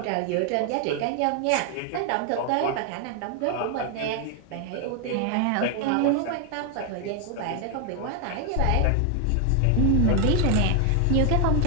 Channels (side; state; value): both; different; correlation 0.00